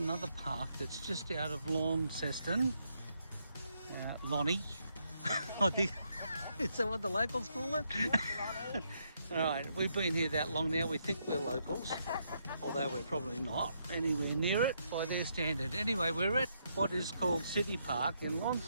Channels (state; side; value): inverted; both; correlation -0.77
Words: park that's just out of Launceston. Lonnie, I think. Is that what the locals call it? Alright, we've been here that long now, we think we're locals, although we're probably not anywhere near it by their standard. Anyway, we're at what is called City Park in